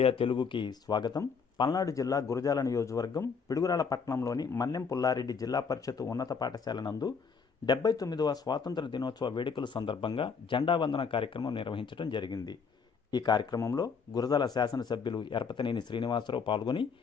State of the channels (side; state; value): right; quieter; 5.6 dB